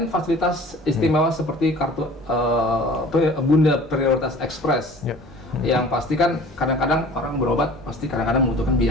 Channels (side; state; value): both; normal; correlation 0.45